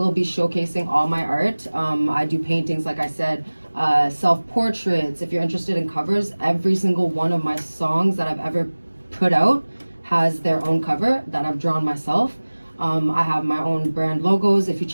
be showcasing all my art. I do paintings, like I said, self-portraits. If you're interested in covers, every single one of my songs that I've ever put out has their own cover that I've drawn myself. I have my own brand logos. If you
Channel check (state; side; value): inverted; both; correlation -1.00